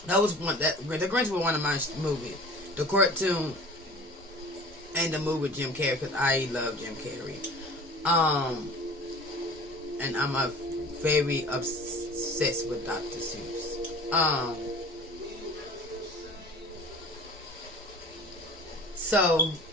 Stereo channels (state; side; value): normal; both; correlation 0.42